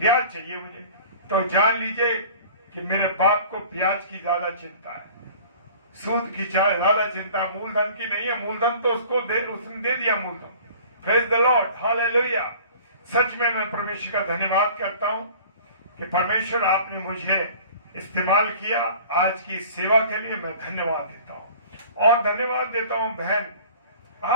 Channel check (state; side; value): inverted; both; correlation -0.46